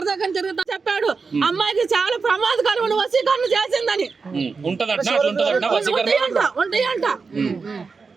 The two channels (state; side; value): quieter; left; 4.8 dB